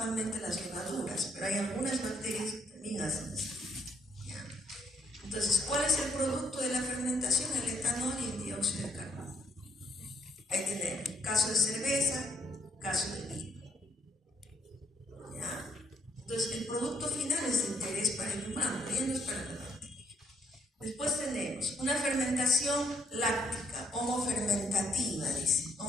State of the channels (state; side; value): normal; both; correlation 0.70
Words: las levaduras, pero hay algunas bacterias que también hacen esta ruta. ¿Ya? Entonces, ¿cuál es el producto de la fermentación? El etanol y el dióxido de carbono. Ahí tenemos caso de cerveza, caso de vino. ¿Ya? Entonces, el producto final es de interés para el humano, ya no es para la bacteria. Después tenemos una fermentación láctica, homofermentativa, dice.